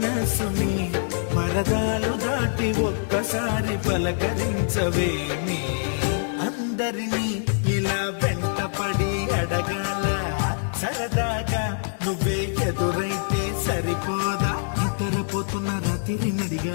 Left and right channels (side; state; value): right; silent; 57 dB below the other